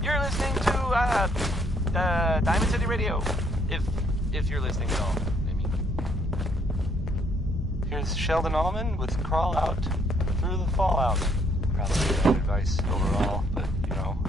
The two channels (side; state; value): both; normal; correlation 0.67